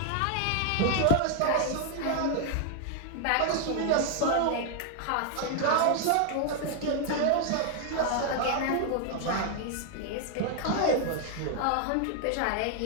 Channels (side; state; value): both; different; correlation 0.00